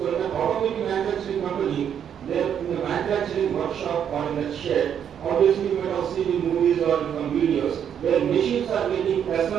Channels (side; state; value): left; quieter; 8.7 dB